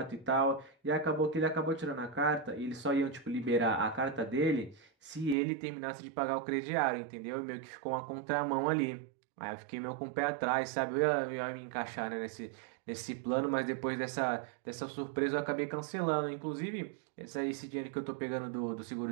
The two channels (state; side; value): drops out; left; at 5.4 s